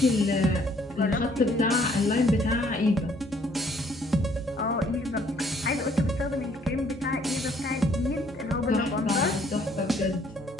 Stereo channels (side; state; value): both; normal; correlation 0.63